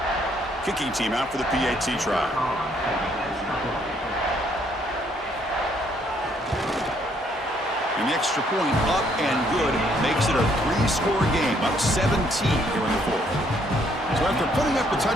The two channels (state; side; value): normal; both; correlation 0.68